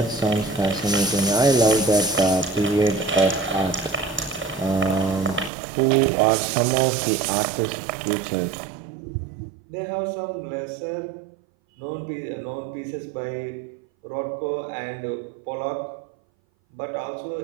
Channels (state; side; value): drops out; left; at 5.5 s